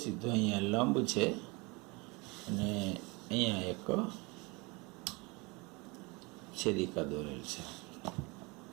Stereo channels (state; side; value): quieter; left; 27.2 dB